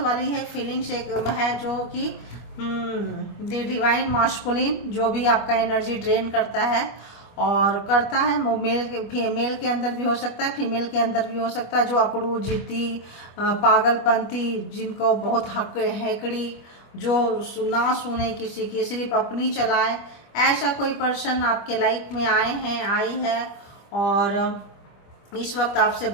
है फीलिंग्स एक है, जो कि द डिवाइन मास्कुलिन, जो भी आपका एनर्जी ड्रेन करता है और करता है, वो मेल के अंदर भी हो सकता है, फीमेल के अंदर भी हो सकता है। जो अकड़ू, जिद्दी, पागलपंती, जिनको बहुत हक हैकड़ी, जो ना सुने किसी की, सिर्फ अपनी चलाए, ऐसा कोई पर्सन आपके लाइफ में आए हैं, आई है, और इस वक्त आपसे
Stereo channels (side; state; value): right; late; 25 ms